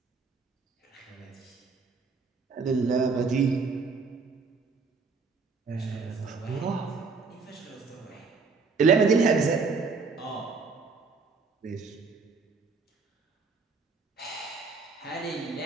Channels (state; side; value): quieter; left; 4.7 dB